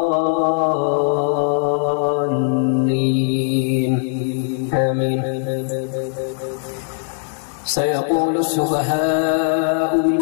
الضالين آمين. سيقول السفهاء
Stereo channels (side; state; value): right; silent; digital silence